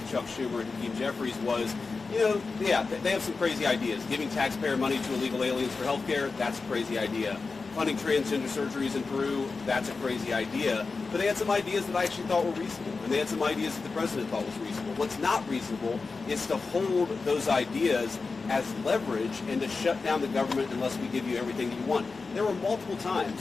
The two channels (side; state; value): right; quieter; 4.3 dB